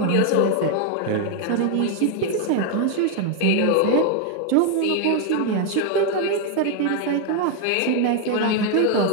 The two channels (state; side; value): different; both; correlation 0.01